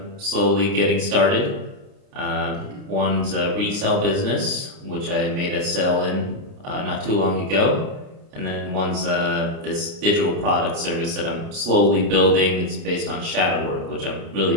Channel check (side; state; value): left; late; 29 ms